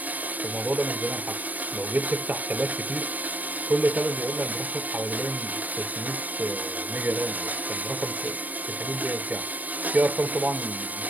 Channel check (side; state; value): left; late; 0.080 ms